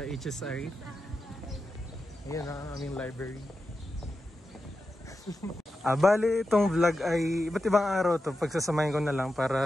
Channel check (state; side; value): normal; both; correlation 0.90